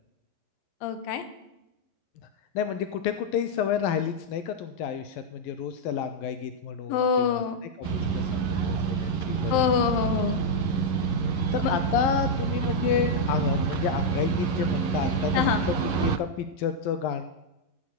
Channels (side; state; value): right; late; 11 ms